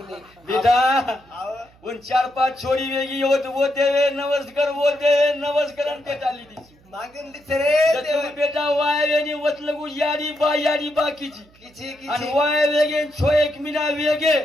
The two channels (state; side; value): noise; right; hum, 29 dB below the sound